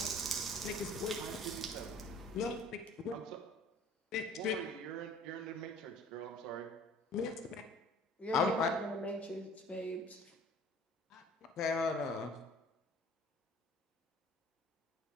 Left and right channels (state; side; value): normal; both; correlation 0.50